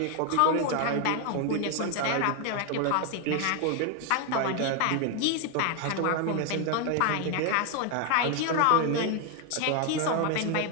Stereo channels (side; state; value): both; different; correlation 0.01